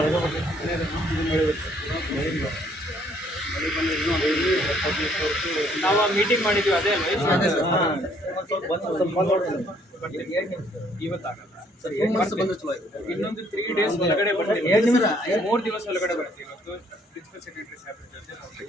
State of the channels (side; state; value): both; normal; correlation 0.65